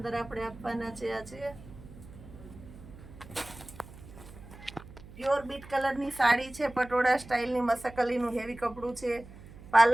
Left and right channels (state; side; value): noise; right; hum, 18 dB below the sound